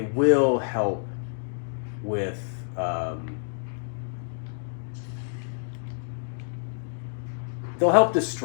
will help with they'll help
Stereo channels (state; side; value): silent; right; digital silence